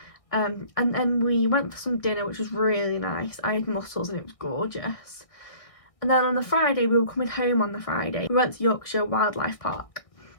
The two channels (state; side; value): late; right; 1.6 ms